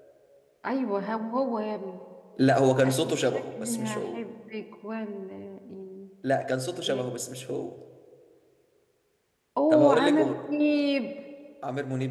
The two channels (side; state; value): both; identical; correlation 1.00